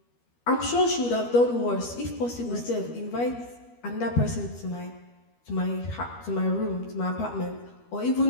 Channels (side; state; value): right; late; 13 ms